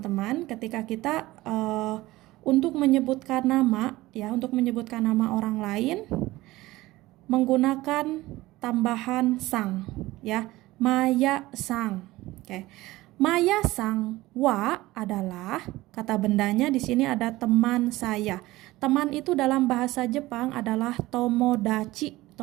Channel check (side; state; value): left; quieter; 18.3 dB